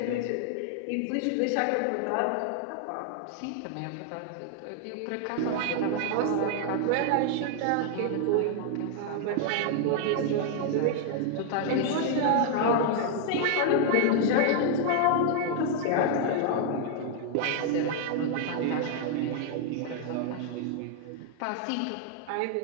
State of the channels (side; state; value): both; different; correlation 0.00